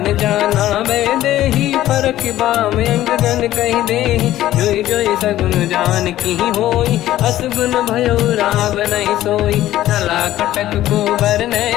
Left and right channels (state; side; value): quieter; right; 14.0 dB